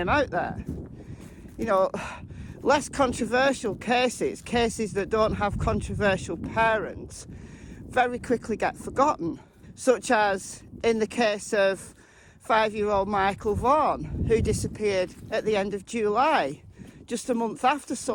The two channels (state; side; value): identical; both; correlation 1.00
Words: out there. You know, less controversial cases that don't have controversial parents, very quickly get forgotten. Such as in the case of 5-year-old Michael Vaughan, who disappeared at the end of July, just a month after